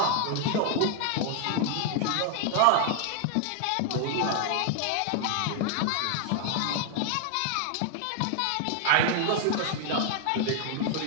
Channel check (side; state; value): both; different; correlation 0.00